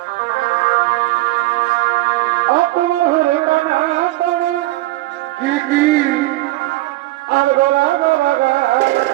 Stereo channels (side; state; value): left; quieter; 18.4 dB